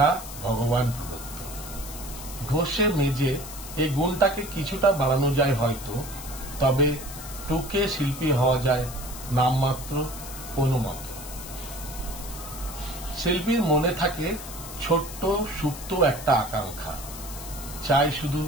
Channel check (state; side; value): noise; left; hiss, 12 dB below the sound